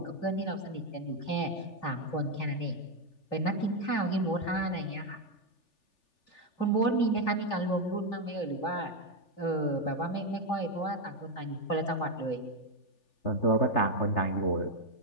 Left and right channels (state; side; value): late; right; 3.4 ms